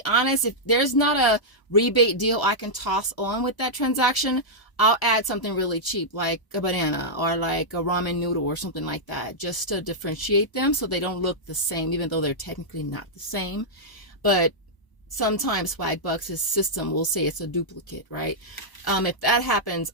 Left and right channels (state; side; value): late; right; 1.0 ms